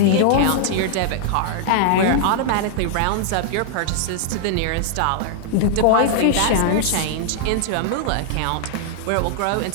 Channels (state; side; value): different; both; correlation 0.00